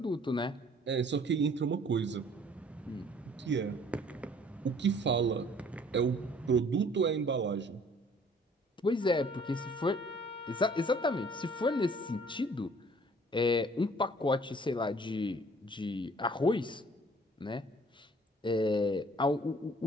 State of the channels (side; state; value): both; normal; correlation 0.55